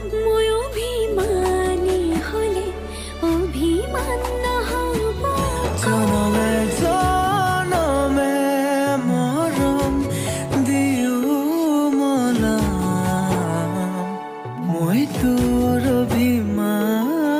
মই অভিমানী হ'লে অভিমান নহ'ব জনমে জনমে মৰম দিও মলাম মই তোৰ অভিমান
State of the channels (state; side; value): identical; both; correlation 1.00